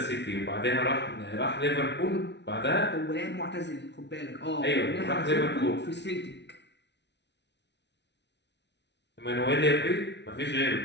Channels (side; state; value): right; late; 0.50 ms